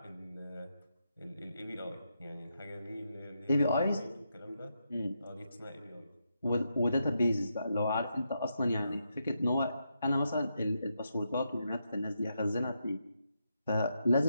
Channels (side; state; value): both; inverted; correlation -0.83